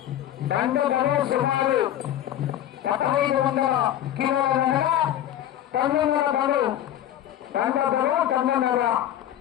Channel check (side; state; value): right; quieter; 11.8 dB